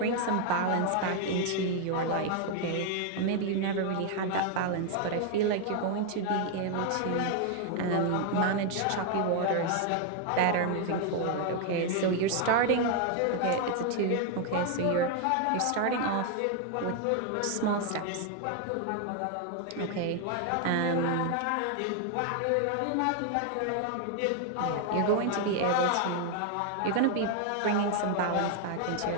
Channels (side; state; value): both; different; correlation 0.01